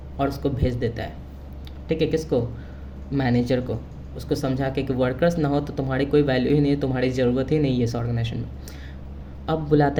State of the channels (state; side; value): identical; both; correlation 1.00